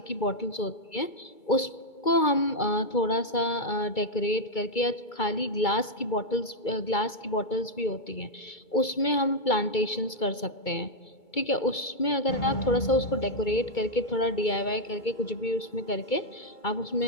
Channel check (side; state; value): right; late; 2.2 ms